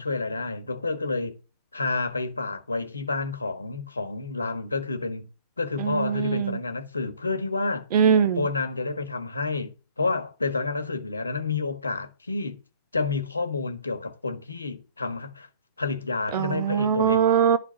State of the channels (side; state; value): both; inverted; correlation -0.55